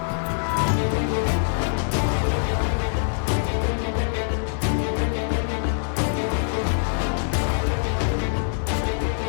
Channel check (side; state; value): right; silent; digital silence